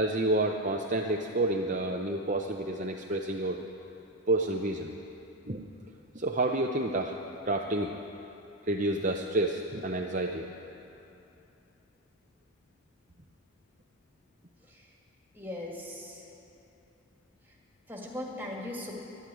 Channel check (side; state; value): both; normal; correlation 0.11